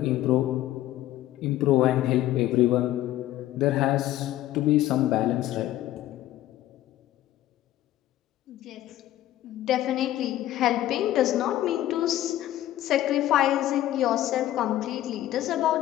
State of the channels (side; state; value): right; quieter; 14.0 dB